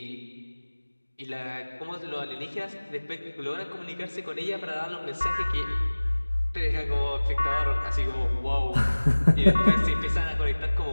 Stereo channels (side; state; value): both; inverted; correlation -1.00